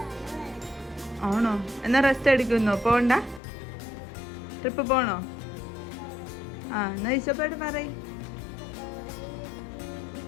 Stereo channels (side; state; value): right; drops out; at 3.4 s